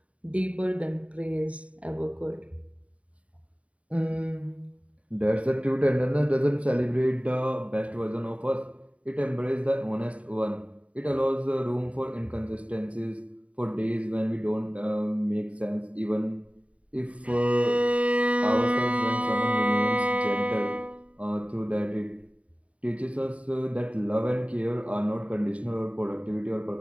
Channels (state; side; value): late; left; 0.065 ms